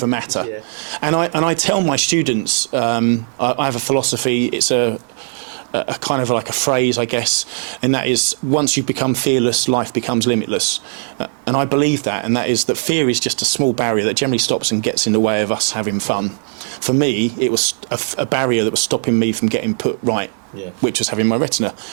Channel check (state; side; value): silent; left; 59 dB below the other